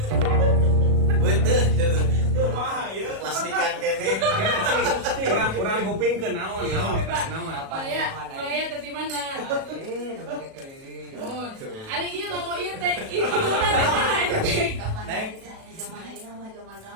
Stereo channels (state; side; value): late; left; 37 ms